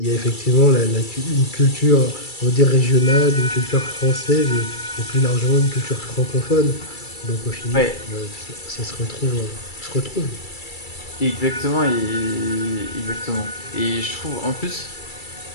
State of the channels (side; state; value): right; late; 2.3 ms